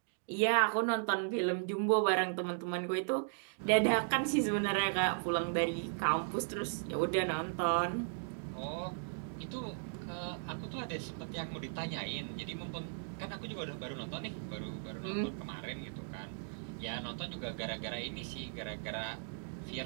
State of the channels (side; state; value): left; silent; digital silence